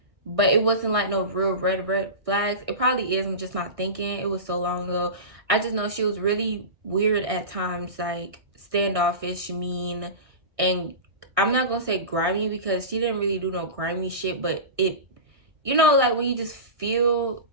But it wasn't like no real red flags. It probably is. I'm just not thinking. It was so long ago. I just know she was really weird at times, like standoffish, mean, and I'm not gonna say grimy because she didn't really do no grimy shit, but it, you know, like when you just feel,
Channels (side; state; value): left; late; 1.6 ms